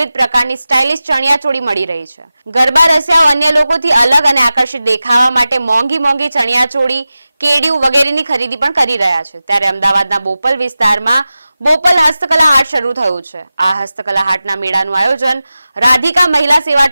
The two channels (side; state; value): both; inverted; correlation -0.95